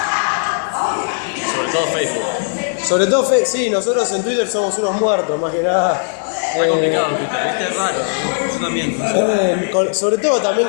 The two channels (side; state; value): right; silent; digital silence